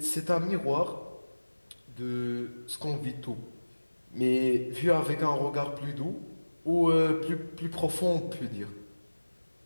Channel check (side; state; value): both; inverted; correlation -1.00